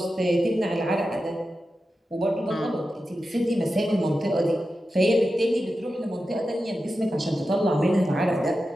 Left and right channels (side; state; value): both; normal; correlation 0.91